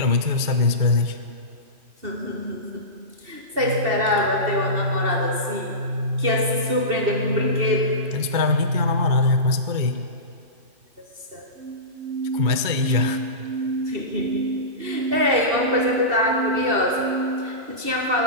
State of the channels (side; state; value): left; late; 2.7 ms